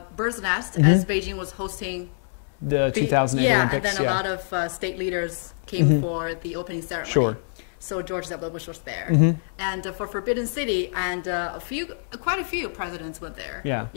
bird's nest as Beijing was hosting the 2008 Olympics. And then a lot of state leaders came for the opening ceremony. Sure. So George W. Bush was there, and for Forbidden City, and quite a few presidents went there. Yeah.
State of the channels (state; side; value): silent; right; 59 dB below the other